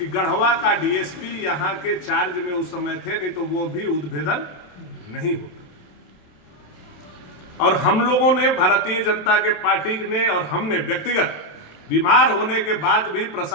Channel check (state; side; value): late; right; 27 ms